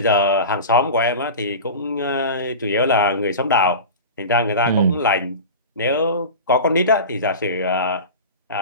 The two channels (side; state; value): both; inverted; correlation -0.31